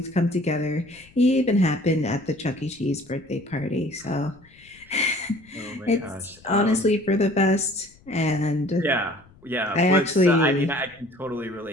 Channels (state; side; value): noise; left; rumble, 27 dB below the sound